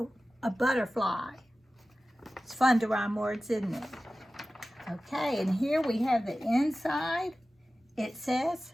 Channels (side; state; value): both; normal; correlation 0.96